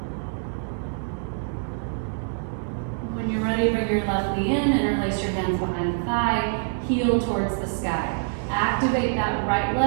When you're ready, bring your left knee in, interlace your hands behind the thigh, heel towards the sky. Activate that right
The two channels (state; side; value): silent; left; digital silence